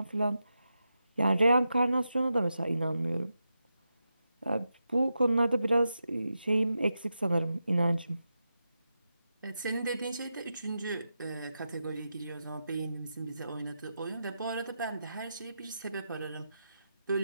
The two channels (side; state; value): both; inverted; correlation -0.88